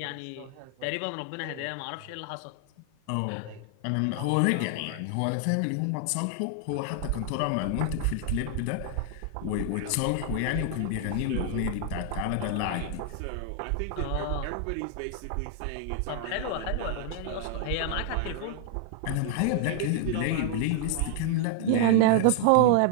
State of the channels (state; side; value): different; both; correlation 0.00